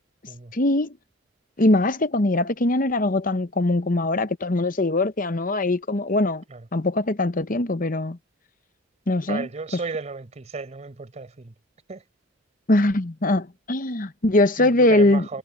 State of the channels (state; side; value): normal; both; correlation 0.41